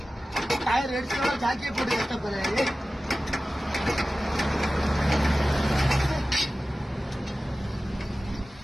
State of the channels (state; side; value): normal; both; correlation 0.96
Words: டயர் எடுத்து ஜாக்கியை போட்டு கஷ்டப்படுறேன்.